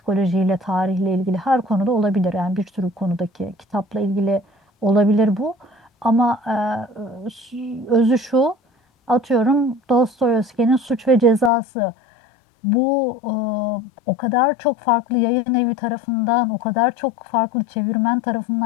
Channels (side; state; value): right; drops out; at 11.5 s